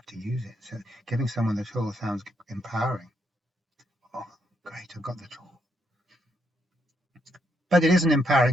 to use it. So giving someone the tool sounds empowering. Oh, great, I've got the tool. But it isn't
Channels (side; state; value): both; normal; correlation 0.77